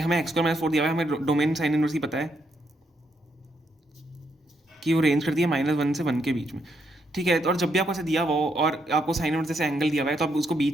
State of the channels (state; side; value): normal; both; correlation 0.77